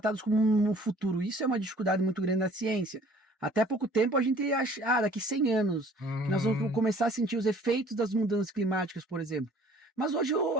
como um futuro. Isso é uma dificuldade muito grande da ciência. Até pouco tempo a gente acha, daqui 100 anos, que nós vamos começar a sentir os efeitos das mudanças climáticas, por exemplo. Mas hoje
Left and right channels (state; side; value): normal; both; correlation 0.54